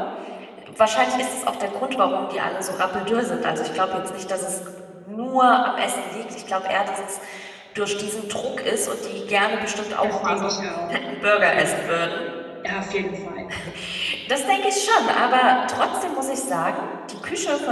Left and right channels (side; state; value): both; identical; correlation 1.00